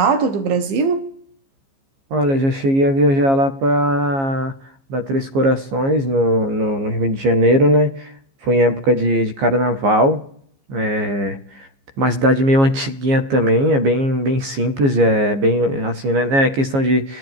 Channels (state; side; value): late; left; 15 ms